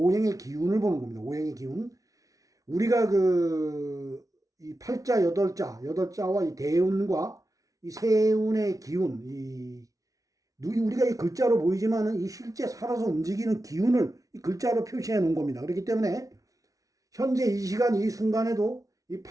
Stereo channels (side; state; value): left; late; 0.17 ms